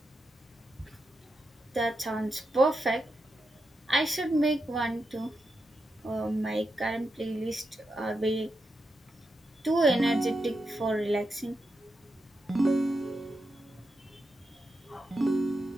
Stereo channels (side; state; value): both; normal; correlation 0.87